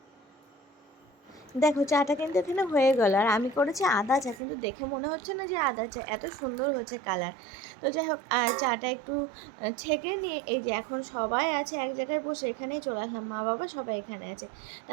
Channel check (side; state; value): left; drops out; at 4.4 s